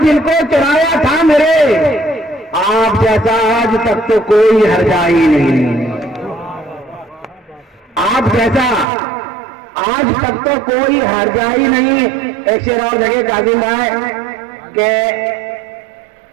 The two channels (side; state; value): left; drops out; at 8.8 s